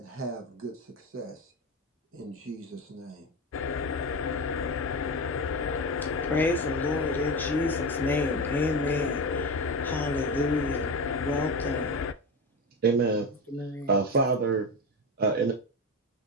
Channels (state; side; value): normal; both; correlation 0.21